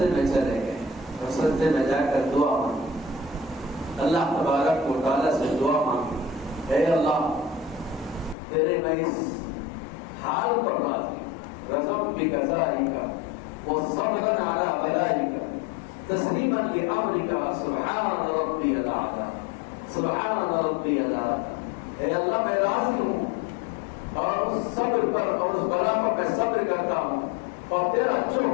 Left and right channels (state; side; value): drops out; right; at 8.3 s